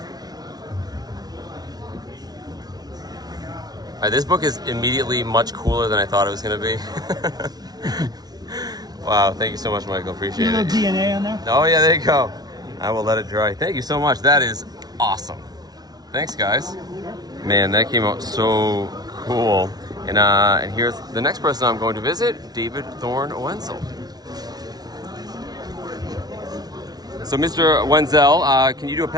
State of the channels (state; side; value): late; left; 0.19 ms